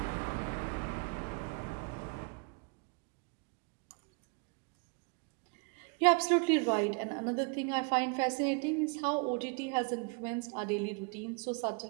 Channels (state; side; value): quieter; left; 35.3 dB